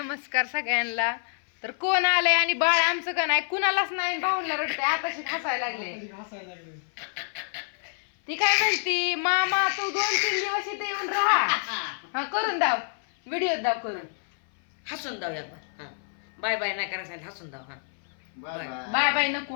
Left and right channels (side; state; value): right; silent; 57 dB below the other